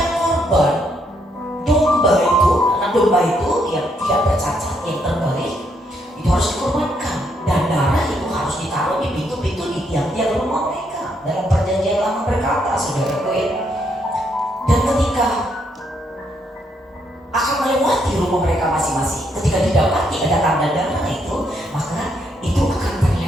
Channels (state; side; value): normal; both; correlation 0.75